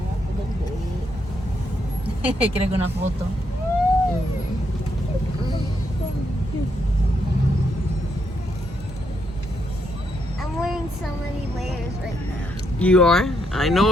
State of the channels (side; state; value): both; normal; correlation 0.77